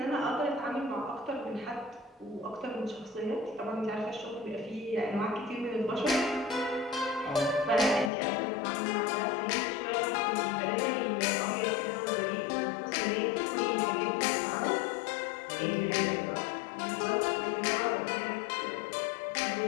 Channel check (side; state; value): right; drops out; at 8.1 s